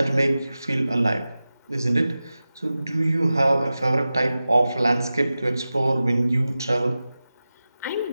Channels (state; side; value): inverted; both; correlation -0.95